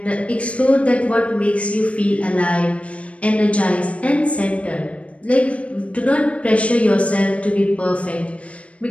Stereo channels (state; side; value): late; right; 0.063 ms